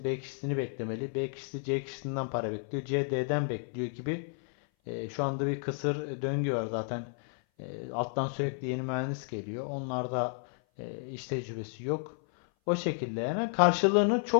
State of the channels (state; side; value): silent; right; 56 dB below the other